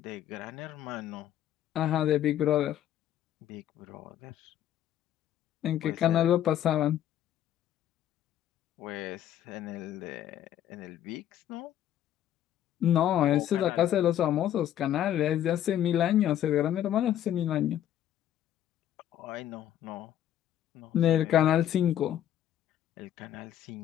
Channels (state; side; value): quieter; right; 11.3 dB